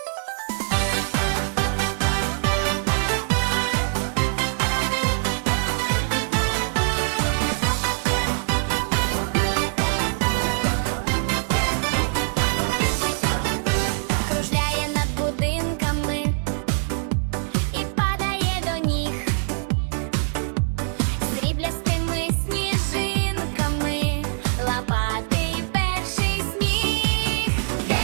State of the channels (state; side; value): silent; left; 62 dB below the other